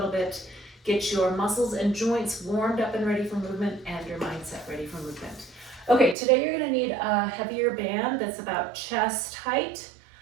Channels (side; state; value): left; drops out; at 6.2 s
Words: bit, get your muscles and joints warmed up and ready for movement, and your mindset ready for movement. Okay, today you're going to need a heavier band that's about chest height,